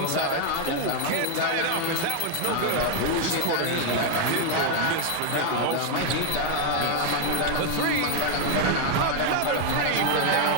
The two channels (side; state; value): both; different; correlation 0.00